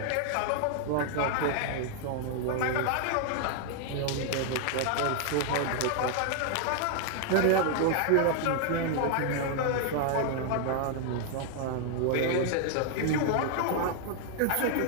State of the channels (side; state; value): both; different; correlation 0.00